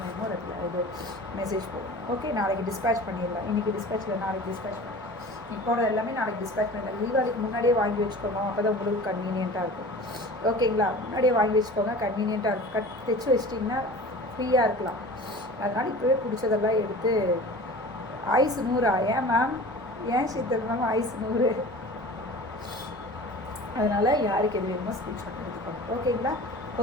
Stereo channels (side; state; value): both; normal; correlation 0.39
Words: வேணுமோ இது மெசேஜ் போடுங்க ஓகே நாளைக்கு டிஸ்பேச் பண்ணிடலாம் இன்றைக்கி டிஸ்பேச் இல்லை நாளைக்கு டிஸ்பேச் பண்ணலாம் இப்போட எல்லாமே நாளைக்கு டிஸ்பேச் பண்ணிடலாம் தீபாவளிக்கு முன்னாடியே வாங்கி வச்சுக்கோங்க அப்போ தான் உங்களுக்கு கன்வீனியண்ட்டாக இருக்கும் ஓகேங்களா முன்னாடியே வாங்கி வச்சுக்கோங்க கன்வீனியண்ட்டாக இருக்கும் தைச்சி வச்சிட்டிங்கன்னா ஃப்ரீயாக இருக்கலாம் அதனால் இப்போவே பிடிச்சதெல்லாம் எடுத்து ஐஸ் 100 ஏன் மேம் ஏன் சித்தம் ஐஸ் 100 அதனால் யாருக்கு எது வேணுமோ ஸ்க்ரீன்ஷாட் எடுத்துக்கோங்க ஓகேங்களா